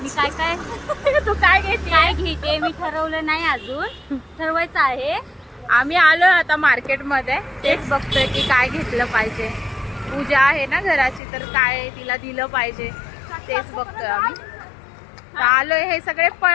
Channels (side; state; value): right; drops out; at 11.2 s